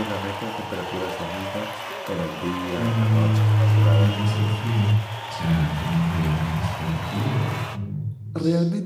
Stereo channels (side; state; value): both; identical; correlation 1.00